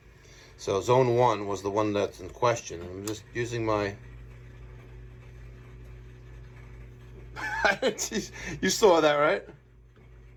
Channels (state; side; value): identical; both; correlation 1.00